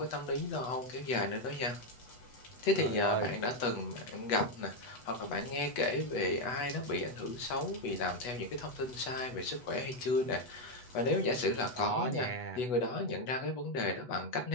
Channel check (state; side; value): late; right; 8.1 ms